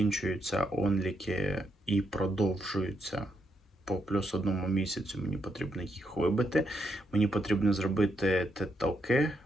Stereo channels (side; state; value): both; normal; correlation 0.79